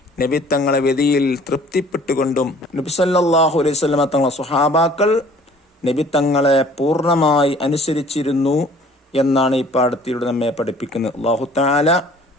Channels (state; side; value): normal; both; correlation 0.53